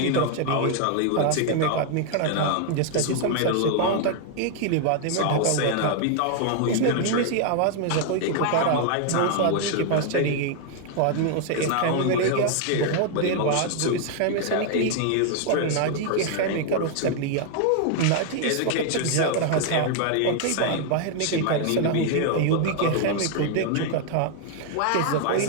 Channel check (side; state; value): both; different; correlation 0.00